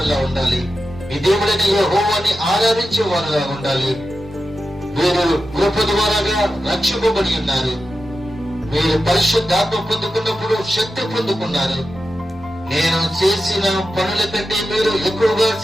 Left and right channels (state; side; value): normal; both; correlation 0.91